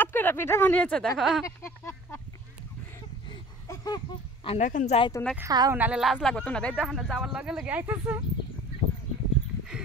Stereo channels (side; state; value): both; normal; correlation 0.44